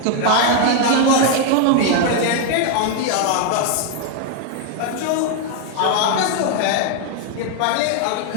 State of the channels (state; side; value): different; both; correlation 0.01